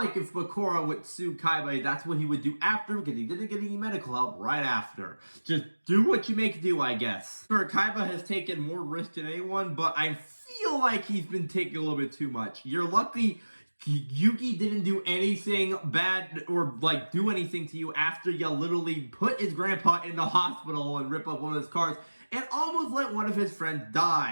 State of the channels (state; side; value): inverted; both; correlation -1.00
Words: if Bakura would sue Kaiba, that's what he would do after, because he didn't get any medical help right after. Just do what you make do, I guess. Sure, Kaiba has taken more risk than anyone, but I feel like he's been taking a little bit too much. You're lucky Yuki didn't do anything bad or, like, do anything to you after you literally put his grandpa in the hospital and rip up one of his cars and almost let one of his friends